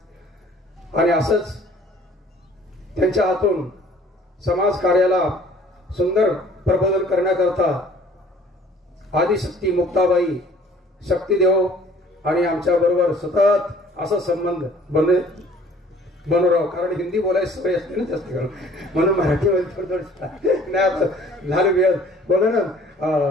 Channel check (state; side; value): normal; both; correlation 0.54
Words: आणि असंच त्यांच्या हातून समाज कार्याला सुंदर प्रबोधन करण्याकरता आदिशक्ती मुक्ताबाई, शक्तीदेव आणि आमच्या बरोबर सतत असा संबंध बनवराव. कारण हिंदी बोलायची सवय असते ना जास्त करून, म्हणून मराठीमध्ये थोडं नाही झालं वेळ बोला ना.